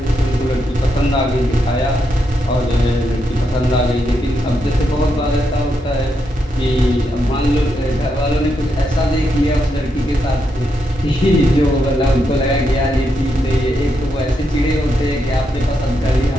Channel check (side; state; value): both; normal; correlation 0.82